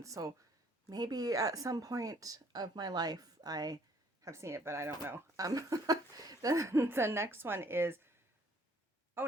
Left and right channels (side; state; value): both; normal; correlation 0.62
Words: so maybe at some point of my life I have seen it, but I don't know. The next one is,